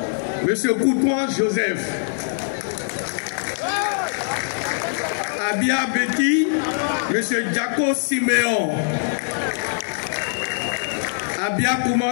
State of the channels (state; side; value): silent; right; 64 dB below the other